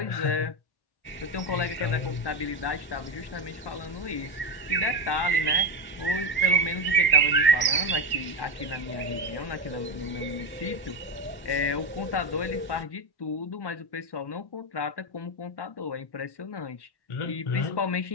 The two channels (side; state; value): right; late; 1.1 ms